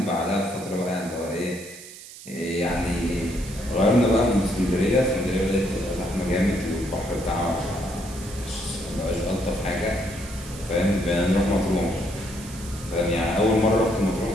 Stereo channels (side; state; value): right; noise; hiss, 16 dB below the sound